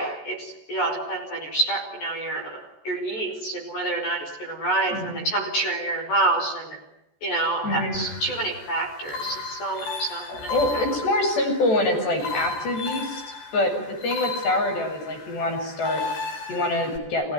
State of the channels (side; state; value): right; late; 14 ms